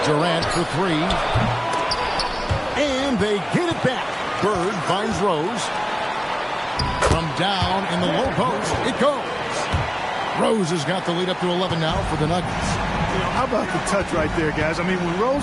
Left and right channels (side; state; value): both; identical; correlation 1.00